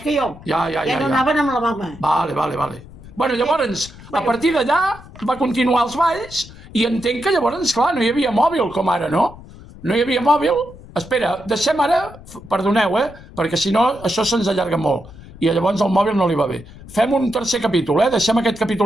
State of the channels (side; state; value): left; noise; rumble, 18 dB below the sound